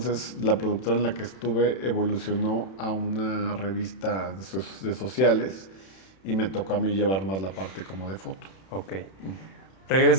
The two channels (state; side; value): late; right; 31 ms